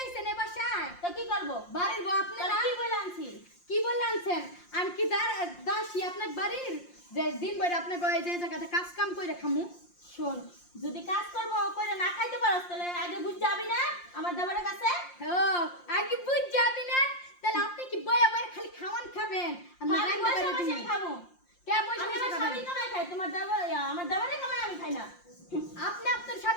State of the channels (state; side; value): late; right; 5.7 ms